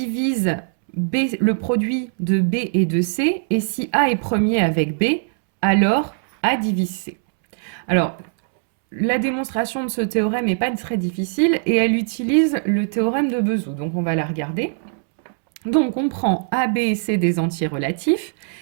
B, le produit de B et de C, et si A est premier avec B, alors A divise C. Alors, la démonstration de ce théorème n'est pas très difficile et elle utilise le théorème de Bezout. Donc, on va la regarder. Donc, on prend A, B et C des entiers relatifs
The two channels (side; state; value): left; silent; 65 dB below the other